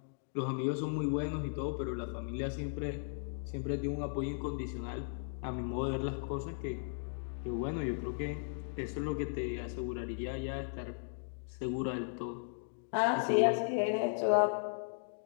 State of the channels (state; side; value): silent; right; digital silence